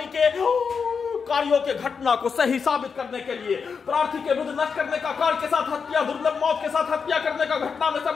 के कार्यों के घटना को सही साबित करने के लिए प्रार्थी के विरुद्ध नष्ट करने का कार्य के साथ हत्या, दुर्लभ मौत के साथ हत्या करने का घटना में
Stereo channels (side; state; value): right; quieter; 5.8 dB